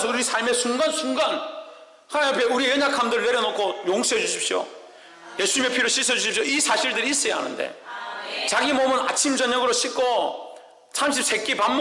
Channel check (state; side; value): identical; both; correlation 1.00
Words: 우리 삶의 순간순간 하나님 앞에 우리의 연약함들을 내려놓고 용서해 주십시오, 예수님의 피로 씻어주십시오, 이 사실들이 있어야 하는데, 자기 몸은 아침 저녁으로 씻고 33끼 밥